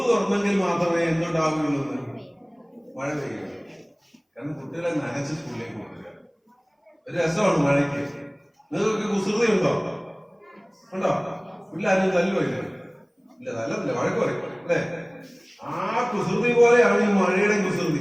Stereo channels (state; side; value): identical; both; correlation 1.00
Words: തുറന്നെങ്കിൽ മാത്രമേ എന്തുണ്ടാവുകയുള്ളൂ എന്ന്. മഴ പെയ്യുക. കാരണം കുട്ടികളെ നനച്ച് സ്കൂളിലേക്ക് കൊണ്ടുവരിക ഒരു രസമാണ് മഴയ്ക്ക്. നിങ്ങൾക്കൊക്കെ കുസൃതി ഉണ്ടോ? വീട്ടിലാരും തല്ലുമില്ല? ഇല്ല, തല്ലത്തില്ല, വഴക്ക് പറയും അല്ലേ? ആ കുസൃതി പോലെയാണ് ഈ മഴയുടെ